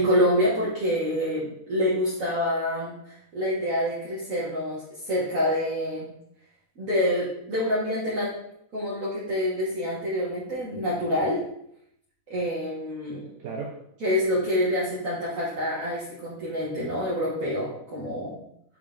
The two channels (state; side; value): late; right; 4.0 ms